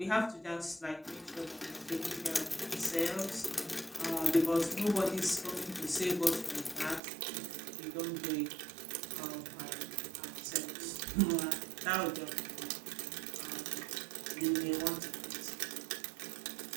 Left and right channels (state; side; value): drops out; left; at 7.0 s